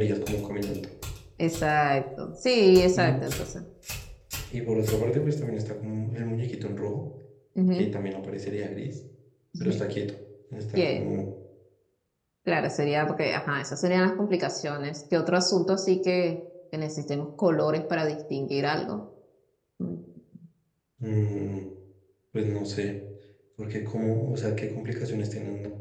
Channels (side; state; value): both; identical; correlation 1.00